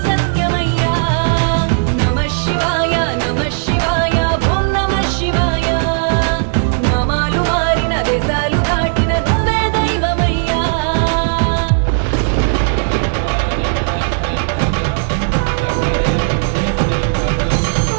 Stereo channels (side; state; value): left; silent; digital silence